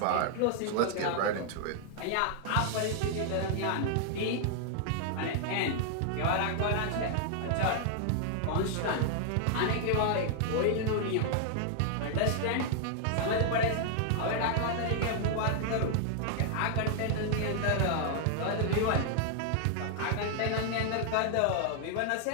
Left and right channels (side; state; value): both; different; correlation 0.00